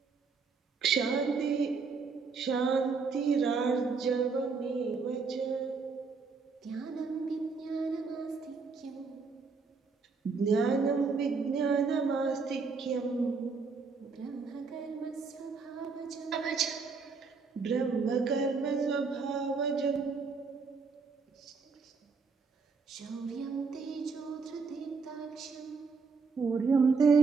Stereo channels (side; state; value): left; quieter; 4.8 dB